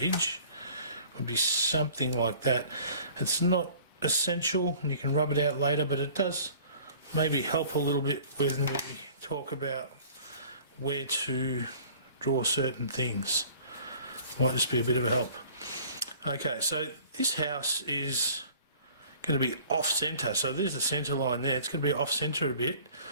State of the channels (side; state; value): both; inverted; correlation -0.49